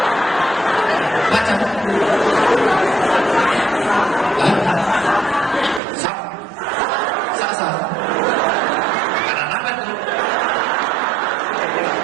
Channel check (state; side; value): drops out; left; at 5.8 s